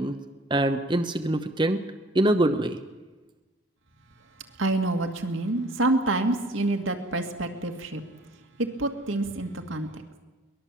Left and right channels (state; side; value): normal; both; correlation 0.53